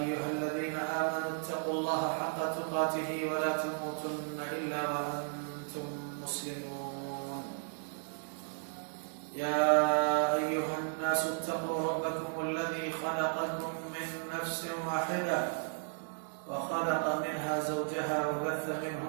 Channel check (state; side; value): silent; left; digital silence